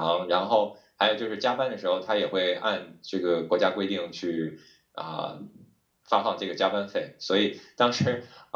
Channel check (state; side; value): identical; both; correlation 1.00